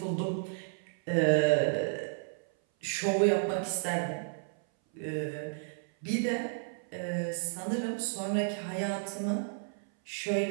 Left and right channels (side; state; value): left; silent; 56 dB below the other